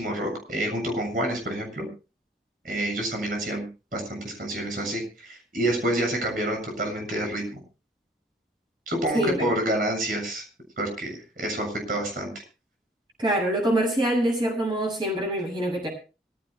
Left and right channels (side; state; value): both; normal; correlation 0.54